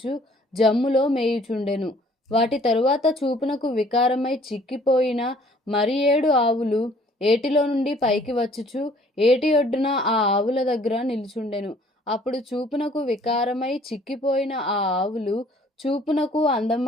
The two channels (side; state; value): both; normal; correlation 0.58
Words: జమ్ములో మేయుచుండెను. వాటి తరువాత చూపునకు వికారమై చిక్కిపోయిన మరి 7 ఆవులు ఏటిలో నుండి పైకి వచ్చుచు ఏటి ఒడ్డున ఆ ఆవుల దగ్గర నిలుచుండెను. అప్పుడు చూపునకు వికారమై చిక్కిపోయిన ఆ ఆవులు చూపునకు